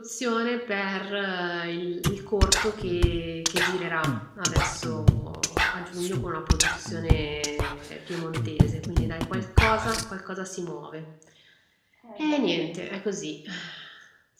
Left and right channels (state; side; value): identical; both; correlation 1.00